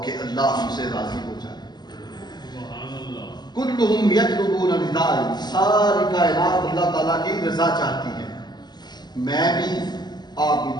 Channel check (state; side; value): late; right; 0.21 ms